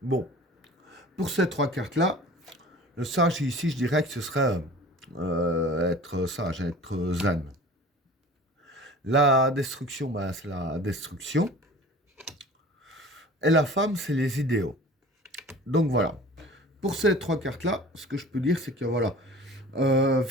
Bon, pour ces trois cartes-là, le sage ici, je dirais que ce serait être sage, être zen. La destruction, ben, c'est la destruction. Et la femme, c'est les idéaux. Donc voilà. Pour ces trois cartes-là, ce que je peux dire, c'est que voilà,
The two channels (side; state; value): both; normal; correlation 0.42